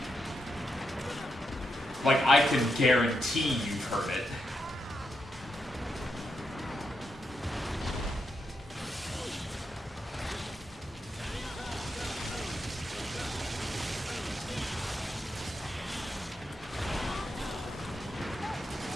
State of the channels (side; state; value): both; normal; correlation 0.84